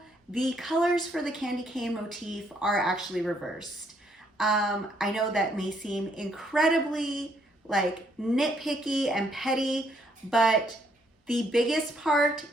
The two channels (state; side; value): normal; both; correlation 0.70